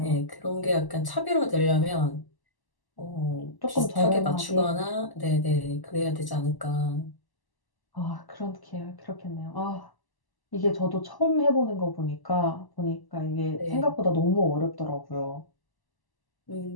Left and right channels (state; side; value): late; right; 1.0 ms